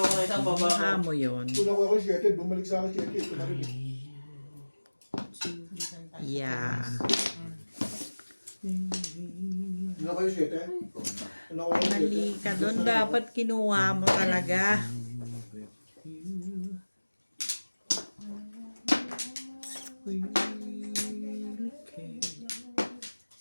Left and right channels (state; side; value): inverted; both; correlation -1.00